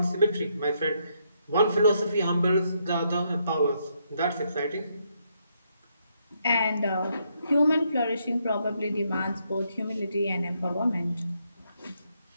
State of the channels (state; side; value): inverted; both; correlation -0.76